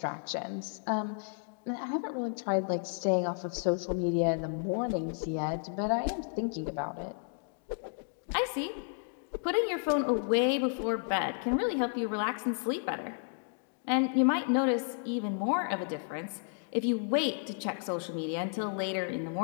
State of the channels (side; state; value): right; silent; 56 dB below the other